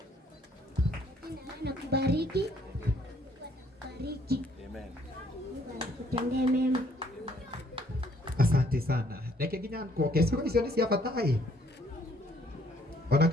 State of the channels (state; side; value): normal; both; correlation 0.64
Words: Na kubariki. Atakubariki. Amen. Mungu akutendee mema. Asante sana. Reke nginya nkoke sio icio ni cia batai. Ona